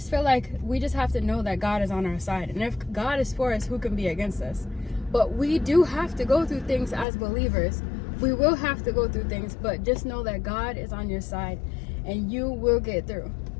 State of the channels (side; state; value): right; drops out; at 7.1 s